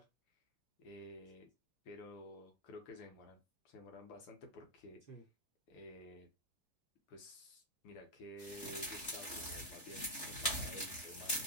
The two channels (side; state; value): right; late; 3.3 ms